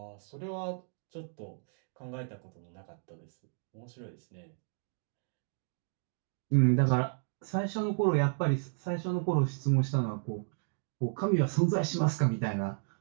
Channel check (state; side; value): silent; left; digital silence